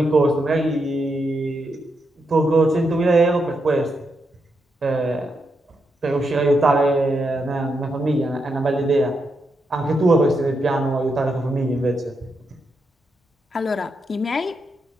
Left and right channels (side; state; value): both; normal; correlation 0.83